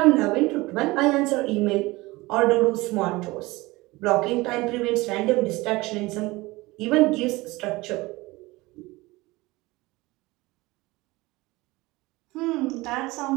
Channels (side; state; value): left; quieter; 21.3 dB